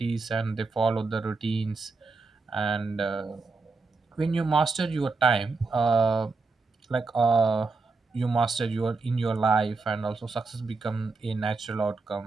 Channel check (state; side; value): quieter; left; 3.9 dB